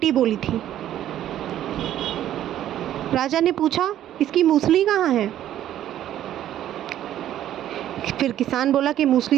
बोली थी। राजा ने पूछा, इसकी मूसली कहाँ है? फिर किसान बोला कि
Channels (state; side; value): quieter; left; 11.9 dB